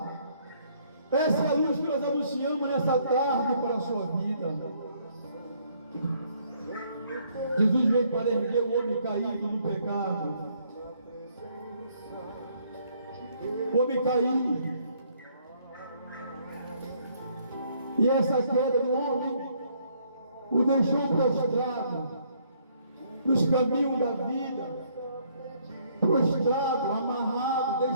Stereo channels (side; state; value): both; inverted; correlation -0.66